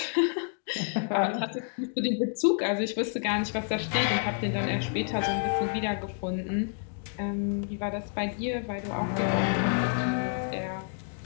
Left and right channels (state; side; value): silent; right; 58 dB below the other